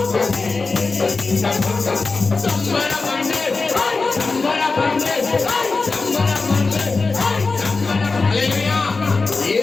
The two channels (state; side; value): quieter; right; 4.0 dB